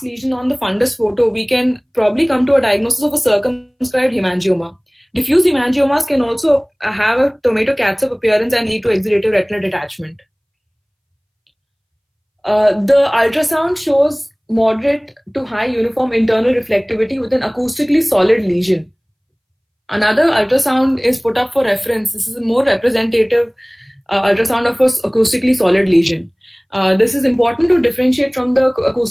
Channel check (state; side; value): identical; both; correlation 1.00